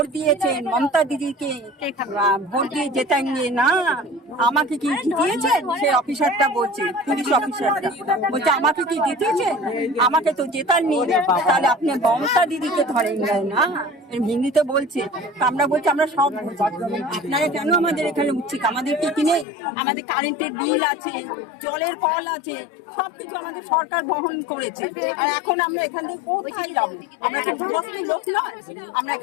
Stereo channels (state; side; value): drops out; right; at 19.5 s